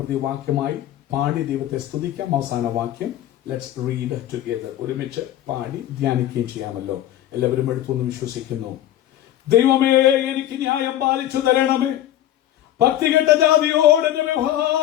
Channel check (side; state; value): right; quieter; 12.6 dB